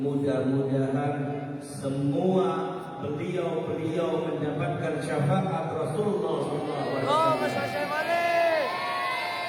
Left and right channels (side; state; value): both; identical; correlation 1.00